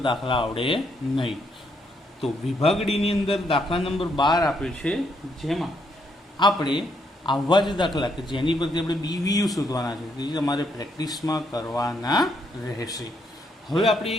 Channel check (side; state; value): both; normal; correlation 0.74